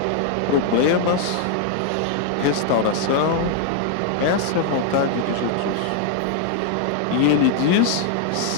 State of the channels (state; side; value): different; both; correlation 0.00